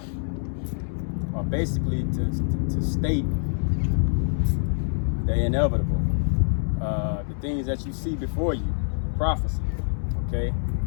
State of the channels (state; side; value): silent; right; digital silence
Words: or basically to state the inevitable, the things that you see before you, prophecy. Okay,